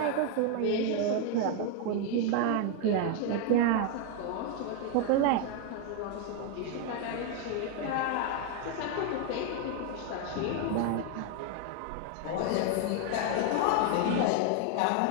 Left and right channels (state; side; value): different; both; correlation 0.00